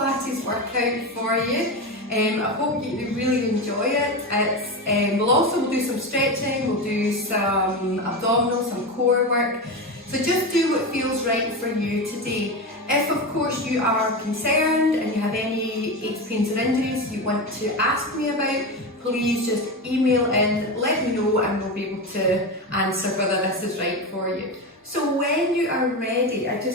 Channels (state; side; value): normal; both; correlation 0.19